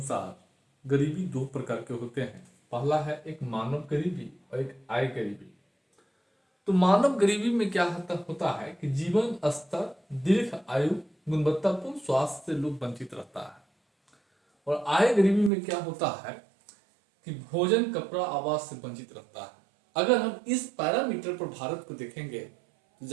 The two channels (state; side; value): drops out; left; at 15.5 s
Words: गरीबी दो प्रकार के होते हैं। पहला है एक मानव गरीबी और एक आय गरीबी। तो मानव गरीबी में क्या होता है कि जीवन स्तर, दीर्घ आयु, गुणवत्तापूर्ण स्वास्थ्य से लोग वंचित रहता है। और आय गरीबी में क्या होता है कि भोजन, कपड़ा, आवास से वंचित रहता है। अगर हम इस पैरामीटर पर भारत को देखेंगे तो